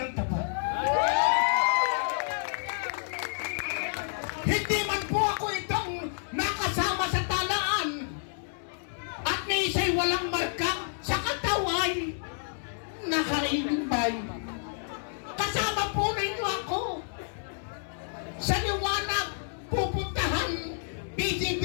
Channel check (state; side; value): silent; right; digital silence